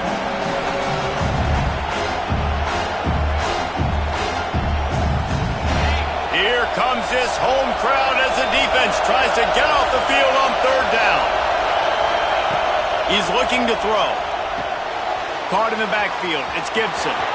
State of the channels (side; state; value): both; identical; correlation 1.00